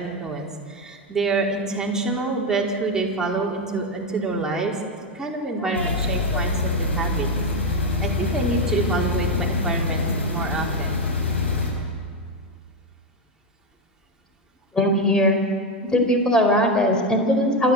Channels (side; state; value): both; normal; correlation 0.09